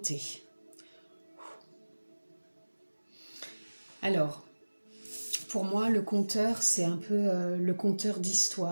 Alors, pour moi, le compteur, c'est un peu le compteur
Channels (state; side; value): inverted; both; correlation -1.00